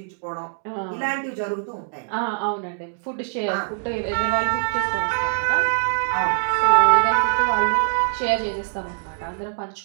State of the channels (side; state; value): left; silent; digital silence